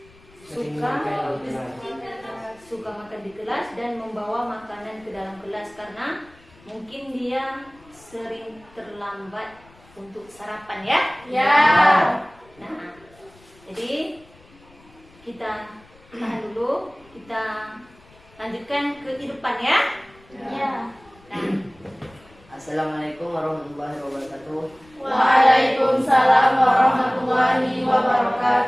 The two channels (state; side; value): noise; left; rumble, 27 dB below the sound